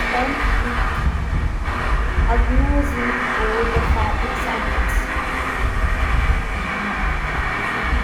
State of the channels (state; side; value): identical; both; correlation 1.00